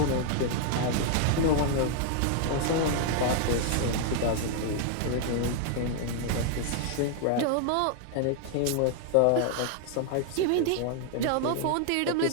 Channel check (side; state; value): both; different; correlation 0.00